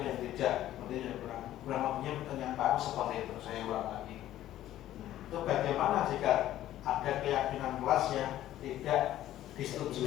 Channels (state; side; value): quieter; right; 13.3 dB